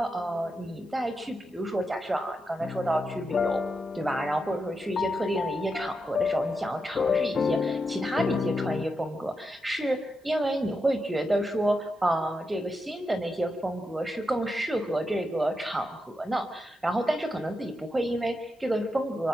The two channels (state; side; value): normal; both; correlation 0.86